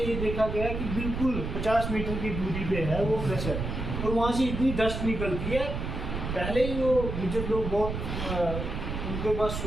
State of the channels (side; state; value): right; noise; rumble, 4 dB below the sound